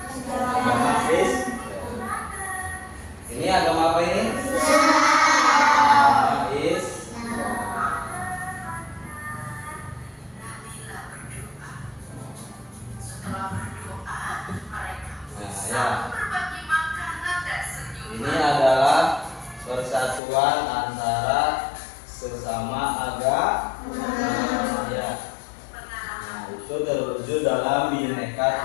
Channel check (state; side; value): drops out; right; at 20.2 s